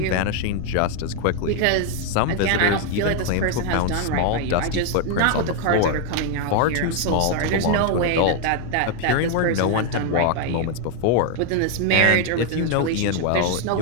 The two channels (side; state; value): both; different; correlation 0.00